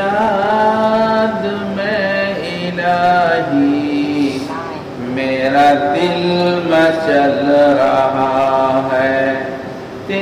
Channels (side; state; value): both; identical; correlation 1.00